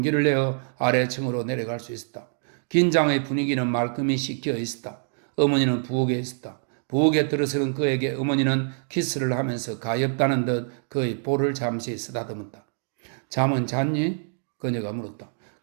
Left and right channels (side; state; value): left; silent; 61 dB below the other